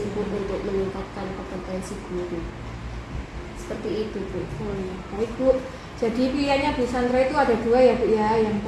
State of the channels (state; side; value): identical; both; correlation 1.00